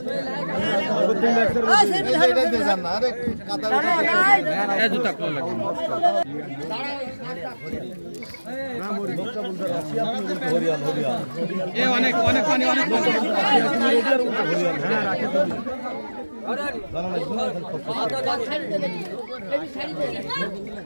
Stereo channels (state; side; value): inverted; both; correlation -1.00